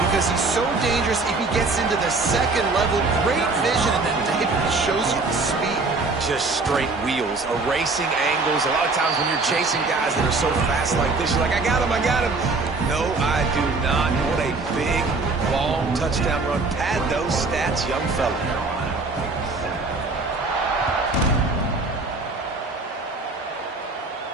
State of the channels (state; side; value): quieter; left; 3.6 dB